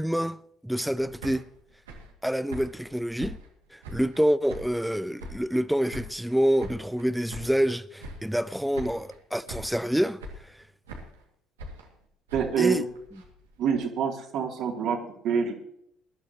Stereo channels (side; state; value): both; normal; correlation 0.90